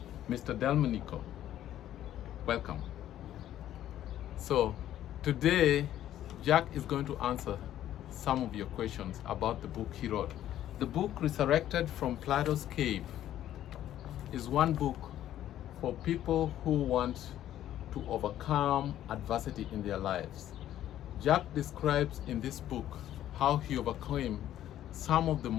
Mr. Delmonico. Welcome. So today Jack is going to answer some of your questions about the book he wrote. The book Resurrected from Plato's Cave is one book for people who want to overcome adversity in their lives. Jack describes in this book how he overcame some of the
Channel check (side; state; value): right; quieter; 12.1 dB